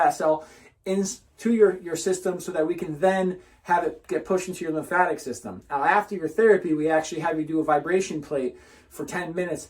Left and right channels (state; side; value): identical; both; correlation 1.00